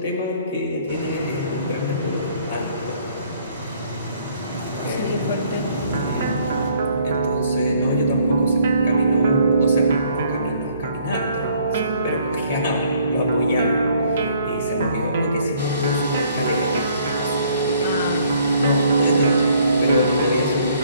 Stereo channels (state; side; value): inverted; both; correlation -0.63